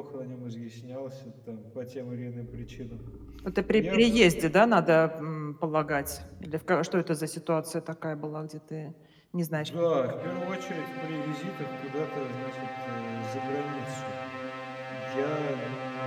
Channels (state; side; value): identical; both; correlation 1.00